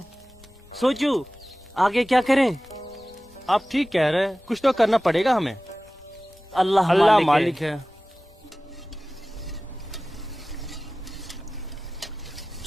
सोचो आगे क्या करें। आप ठीक कह रहे हैं, कुछ तो करना पड़ेगा हमें। अल्लाह मालिक है।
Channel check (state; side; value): normal; both; correlation 0.97